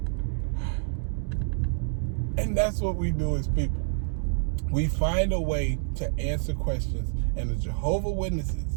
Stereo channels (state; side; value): silent; left; digital silence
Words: And that's what we do as people. We find a way to answer questions, and the Jehovah Witnesses